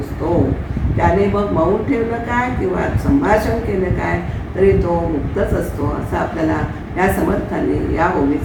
त्याने मग मौन ठेवलं काय किंवा संभाषण केलं काय तरी तो मुक्तच असतो असं आपल्याला या समर्थांनी या ओवीत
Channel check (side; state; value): both; identical; correlation 1.00